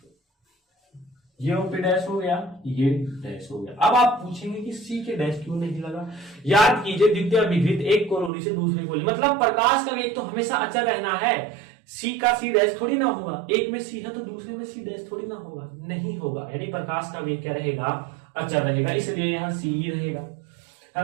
ये OP' हो गया, ये डैश हो गया। अब आप पूछेंगे कि C के डैश क्यों नहीं लगा। याद कीजिए द्वितीय विकृत एक कोरोनी से दूसरे कोरोनी, मतलब प्रकाश का वेग तो हमेशा अचर रहना है। C का C' थोड़ी ना होगा, एक में C है तो दूसरे में C' थोड़ी ना होगा, नहीं होगा। यानी प्रकाश का वेग क्या रहेगा, अचर रहेगा, इसलिए यहां C ही रहेगा,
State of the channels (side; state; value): left; drops out; at 8.3 s